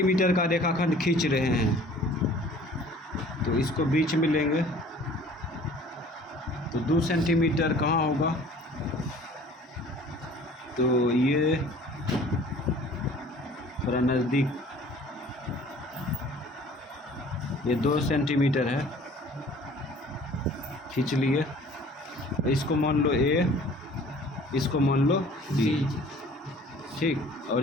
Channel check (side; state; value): both; normal; correlation 0.50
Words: का रेखाखंड खींच रहे हैं, तो इसको बीच में लेंगे। तो 2 सेंटीमीटर कहाँ होगा, तो ये थोड़ा नज़दीक, ये 2 सेंटीमीटर है, खींच लिए। इसको मान लो ए, इसको मान लो बी। ठीक, और